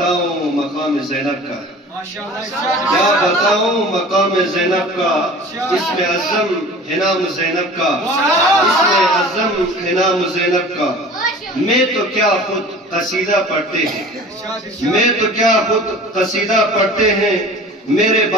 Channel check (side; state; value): both; normal; correlation 0.41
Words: मकाम ज़ैनब का, क्या बताऊं मकाम ज़ैनब का, इसमें अज़म है नाम ज़ैनब का, इसमें अज़म है नाम ज़ैनब का। मैं तो क्या खुद कसीदा पढ़ते हैं, मैं तो क्या खुद कसीदा पढ़ते हैं। मेरे